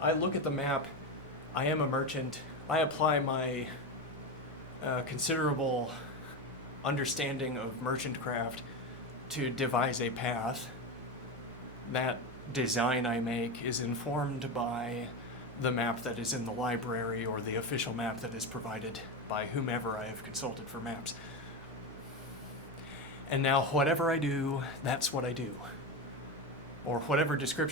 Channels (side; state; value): both; normal; correlation 0.17